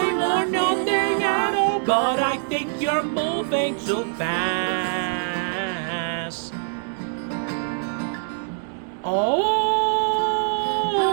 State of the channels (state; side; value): silent; left; 63 dB below the other